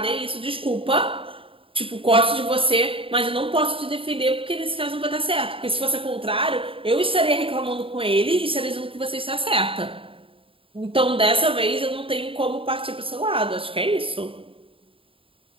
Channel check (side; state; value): left; late; 0.26 ms